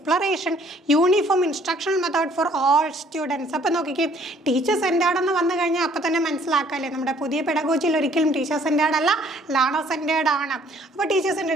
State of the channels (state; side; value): normal; both; correlation 0.60